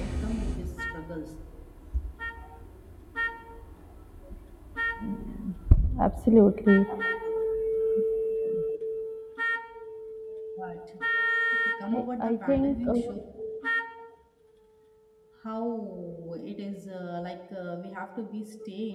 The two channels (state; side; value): identical; both; correlation 1.00